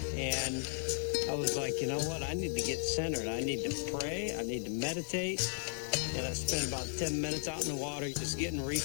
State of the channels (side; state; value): right; silent; 54 dB below the other